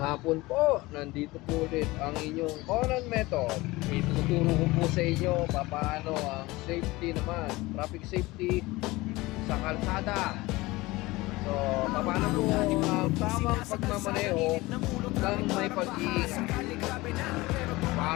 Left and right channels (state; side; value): quieter; right; 20.7 dB